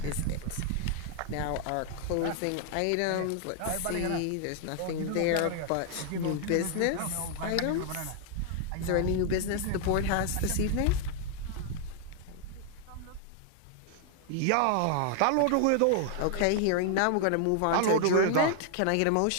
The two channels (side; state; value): both; different; correlation 0.00